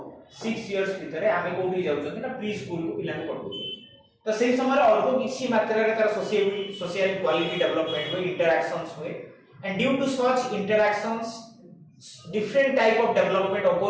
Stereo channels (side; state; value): both; identical; correlation 1.00